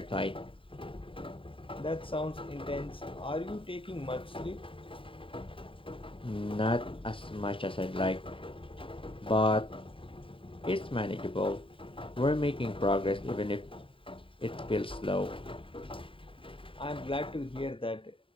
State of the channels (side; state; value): right; late; 0.25 ms